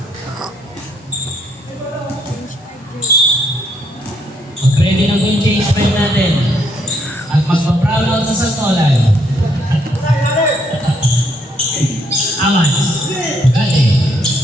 Mag-ready na po yung change pen natin. At magpa-proud out sa Santolan. Amats. Gati.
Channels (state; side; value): normal; both; correlation 0.71